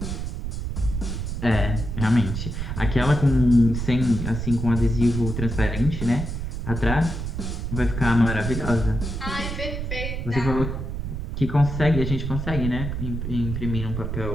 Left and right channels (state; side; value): noise; right; rumble, 4 dB below the sound